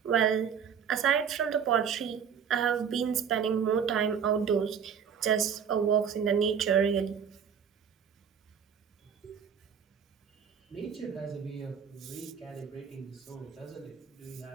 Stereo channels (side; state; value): left; quieter; 7.4 dB